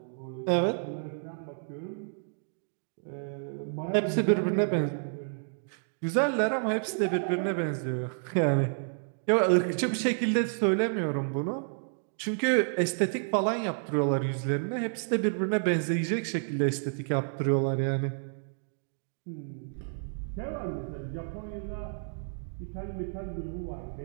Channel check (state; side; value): silent; left; digital silence